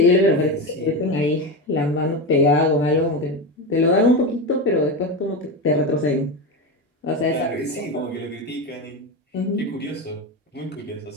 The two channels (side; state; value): both; normal; correlation 0.18